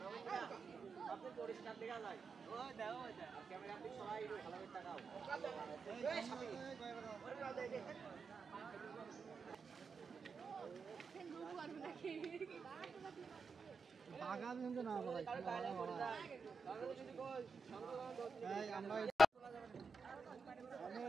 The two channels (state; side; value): normal; both; correlation 0.88